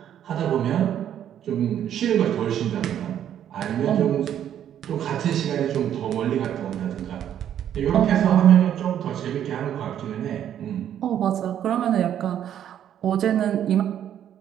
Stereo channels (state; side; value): quieter; left; 10.2 dB